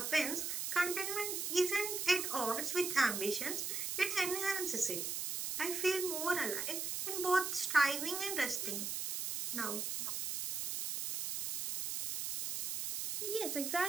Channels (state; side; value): noise; right; hiss, 2 dB below the sound